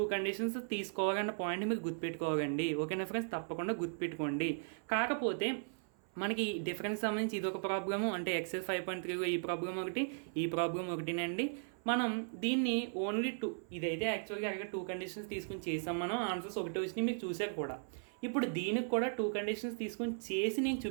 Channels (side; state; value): left; silent; 53 dB below the other